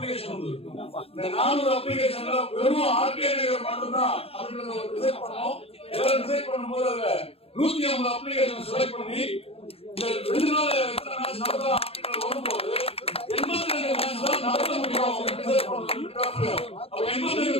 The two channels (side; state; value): right; late; 0.28 ms